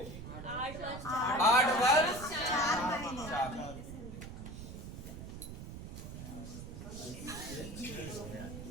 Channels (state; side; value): noise; right; rumble, 10 dB below the sound